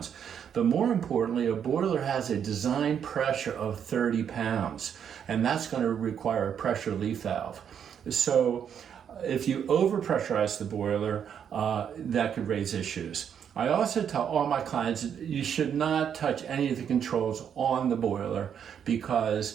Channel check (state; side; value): quieter; left; 8.2 dB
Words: But more importantly, a boiler has a design pressure of 30 pounds, and that's going to require a pressure relief valve. So if you overpressurize the boiler, that could raise issues. I also tell all my clients you should not touch any of the controls on the boiler,